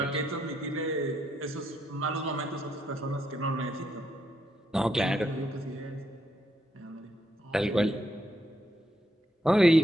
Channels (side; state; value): both; normal; correlation 0.78